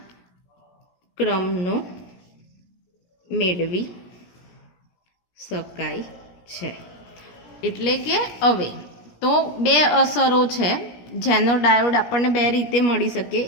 ક્રમનો મેળવી શકાય છે. એટલે કે હવે તો બે અસરો છે. જેનર ડાયોડ આપણને બે રીતે મળી શકે,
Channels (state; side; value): late; right; 17 ms